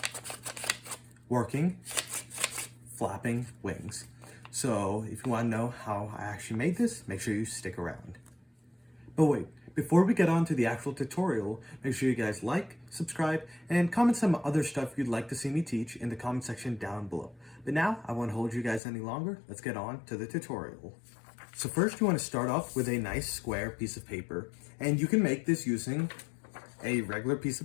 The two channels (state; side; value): drops out; right; at 18.8 s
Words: working flapping wings. So if you want to know how I actually made this, make sure you stick around. But wait, before we get on to the actual tutorial, make sure you guys like, subscribe, and comment some other stuff you'd like to see me teach in the comment section down below. But now, I won't hold you guys any longer. Let's get on to the tutorial. So first you want to start off with a nice square piece of paper, and you can make this using a regular piece